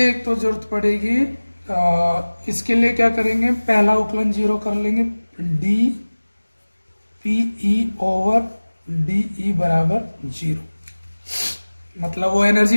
तो जरूरत पड़ेगी, इसके लिए क्या करेंगे, पहला उकलन जीरो कर लेंगे, D P E over D E बराबर जीरो। मतलब वो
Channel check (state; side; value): inverted; both; correlation -1.00